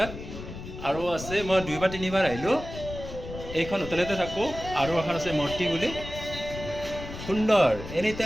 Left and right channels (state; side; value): noise; left; rumble, 11 dB below the sound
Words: আৰু আছে মই 2 বা 3 বাৰ আহিলোঁ। এইখন হোটেলতে থাকোঁ, আৰু এখন আছে মূৰ্তি বুলি। সুন্দৰ, এনি